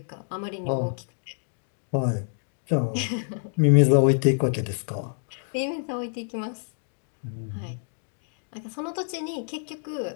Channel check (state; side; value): silent; right; digital silence